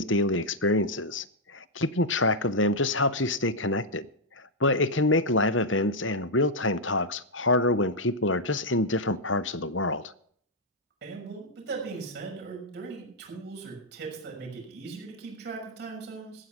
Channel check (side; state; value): both; normal; correlation -0.04